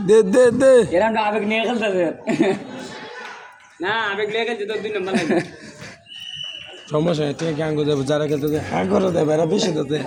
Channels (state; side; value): identical; both; correlation 1.00